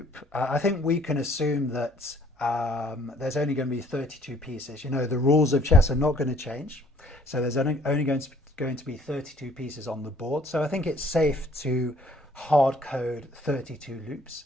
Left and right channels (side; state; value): both; normal; correlation 0.58